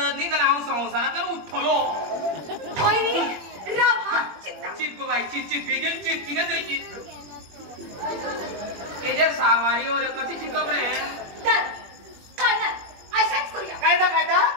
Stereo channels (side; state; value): left; late; 21 ms